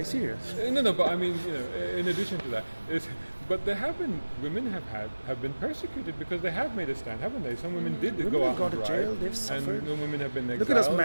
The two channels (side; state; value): both; inverted; correlation -1.00